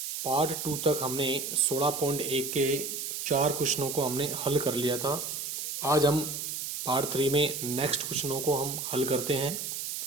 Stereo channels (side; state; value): right; noise; hiss, 4 dB below the sound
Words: Part 2 तक हमने 16.1 के 4 क्वेश्चनों को हमने हल कर लिया था। आज हम पार्ट 3 में नेक्स्ट क्वेश्चनों को हम हल करते हैं।